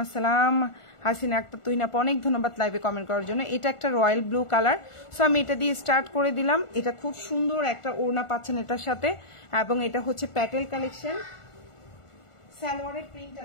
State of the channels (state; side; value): late; right; 1.4 ms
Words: আসসালাম হাসিনা আক্তার। তুহিন আপু অনেক ধন্যবাদ লাইভে কমেন্ট করার জন্য। এটা একটা রয়্যাল ব্লু কালার। সো আমি এটা দিয়ে স্টার্ট করে দিলাম। এটা খুব সুন্দর একটা ওড়না পাচ্ছেন এটার সাথে, এবং এটা হচ্ছে প্যাটেল কালেকশন। সালোয়ারের প্রিন্টটা